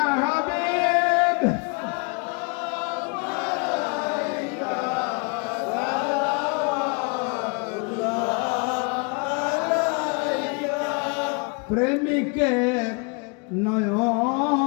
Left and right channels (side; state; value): right; quieter; 33.2 dB